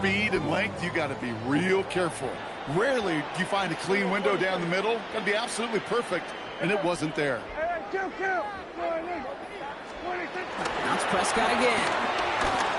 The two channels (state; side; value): identical; both; correlation 1.00